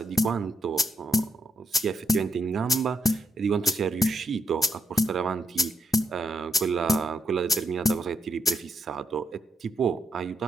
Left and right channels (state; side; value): normal; both; correlation 0.78